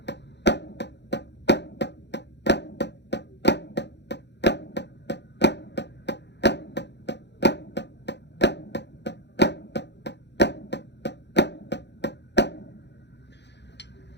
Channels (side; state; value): right; late; 0.50 ms